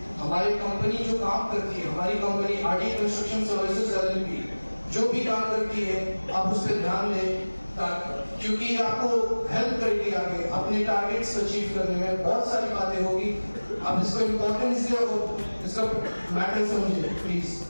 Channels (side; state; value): both; inverted; correlation -1.00